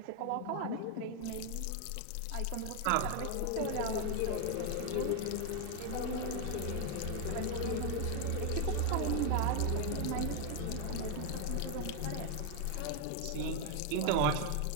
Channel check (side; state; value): both; different; correlation 0.01